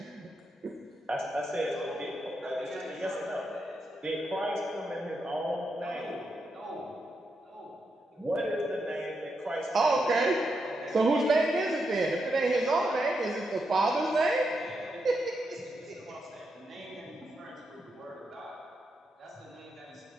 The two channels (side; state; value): both; normal; correlation 0.84